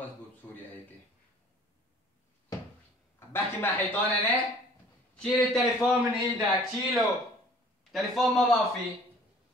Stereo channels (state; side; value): normal; both; correlation 0.52